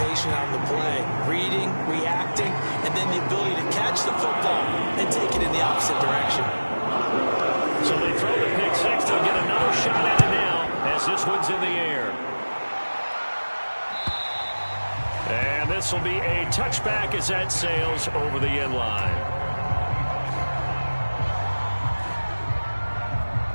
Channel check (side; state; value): both; inverted; correlation -1.00